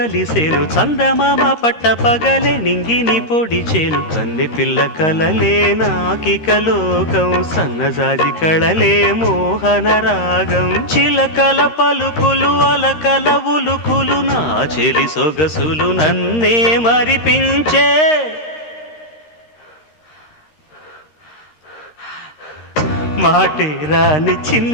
చందమామ పట్ట పగలే నింగిని పొడిచేను కన్నె పిల్ల కలలే నాకిక లోకం సన్నజాజి కళలే మోహన రాగం చిలకల పలుకులు అలకల ఉలుకులు నా చెలి సొగసులు నన్నే మరిపించే మాటే రాని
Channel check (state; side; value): late; right; 13 ms